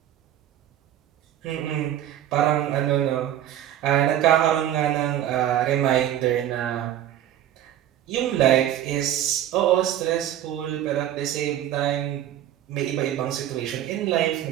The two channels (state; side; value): quieter; left; 11.7 dB